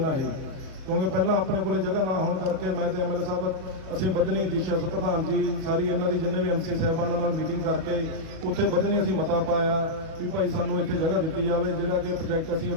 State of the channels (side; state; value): left; late; 38 ms